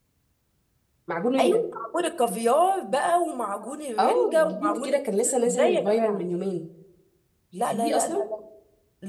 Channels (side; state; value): both; identical; correlation 1.00